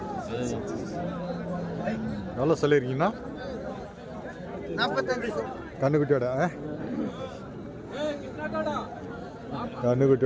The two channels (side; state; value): both; identical; correlation 1.00